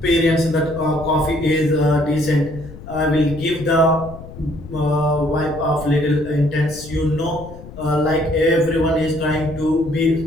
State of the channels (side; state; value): left; noise; rumble, 15 dB below the sound